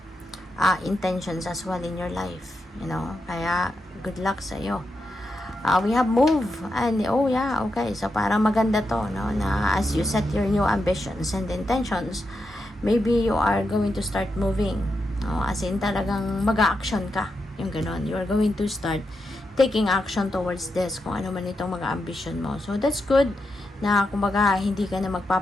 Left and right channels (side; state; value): both; normal; correlation 0.86